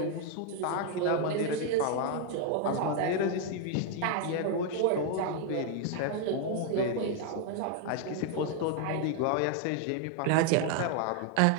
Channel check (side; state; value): both; different; correlation 0.00